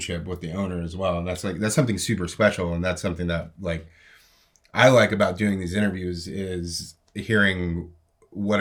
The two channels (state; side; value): identical; both; correlation 1.00